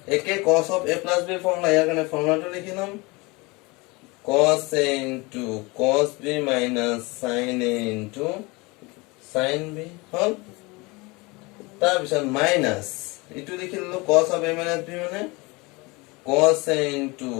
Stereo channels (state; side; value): quieter; right; 25.2 dB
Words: একে cos of a plus b formula ইয়ার কারণে ফর্মুলাটা লিখি নাম cos a into cos b minus sin a into sin b হল তার পিছত মাইনাস এটু লিখি ললো cos of a minus b মানে cos a into